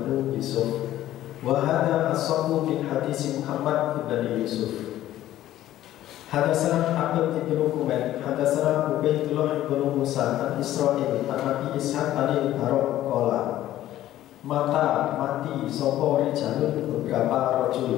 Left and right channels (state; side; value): quieter; right; 13.6 dB